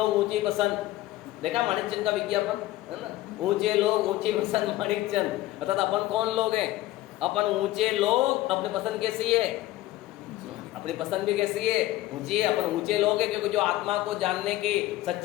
ऊंची पसंद, देखा माणिकचंद का विज्ञापन है ना, ऊंचे लोग ऊंची पसंद माणिकचंद। अर्थात अपन कौन लोग हैं? अपन ऊंचे लोग। अपनी पसंद कैसी है? अपनी पसंद भी कैसी है? ऊंची है। अपन ऊंचे लोग हैं क्योंकि जो आत्मा को जानने की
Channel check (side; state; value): right; quieter; 16.1 dB